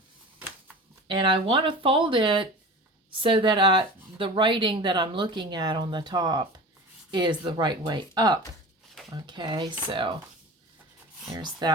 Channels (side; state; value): both; normal; correlation 0.35